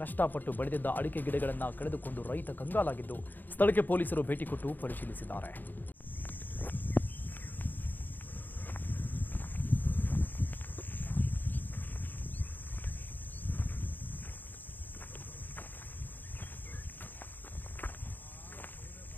ಕಷ್ಟಪಟ್ಟು ಬೆಳೆದಿದ್ದ ಅಡಿಕೆ ಗಿಡಗಳನ್ನು ಕಳೆದುಕೊಂಡು ರೈತ ಕಂಗಾಲಾಗಿದ್ದು ಸ್ಥಳಕ್ಕೆ ಪೊಲೀಸರು ಭೇಟಿ ಕೊಟ್ಟು ಪರಿಶೀಲಿಸಿದ್ದಾರೆ.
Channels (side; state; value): right; late; 0.088 ms